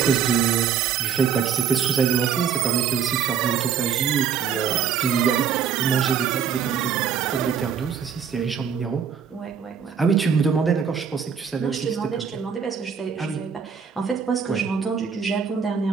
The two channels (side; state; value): left; quieter; 7.3 dB